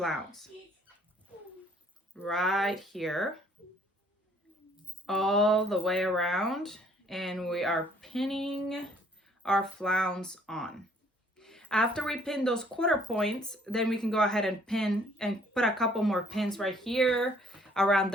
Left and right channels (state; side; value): normal; both; correlation 0.61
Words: Right here, all the way around, and we are pinning our flounce on. After we pin those quarter points, then we can go ahead and pin and put a couple more pins right here around